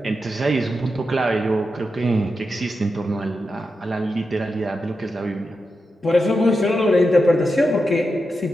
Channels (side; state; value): both; normal; correlation 0.88